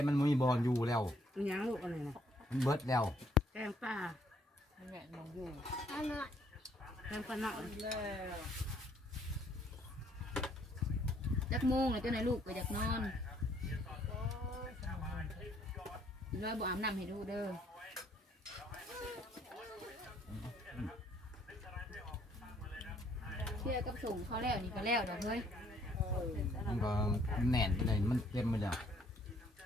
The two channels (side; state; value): both; normal; correlation 0.65